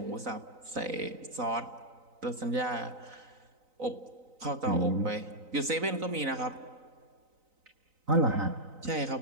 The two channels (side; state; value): left; late; 3.9 ms